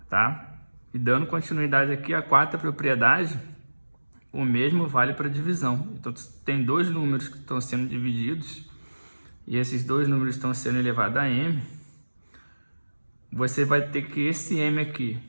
Tá? E dando continuidade aqui à quarta propriedade, o mesmo vale para divisão. Então tem 2 números que estão sendo divididos e esses 2 números estão sendo elevados a m. Você vai ter que esse m aqui,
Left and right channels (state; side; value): inverted; both; correlation -1.00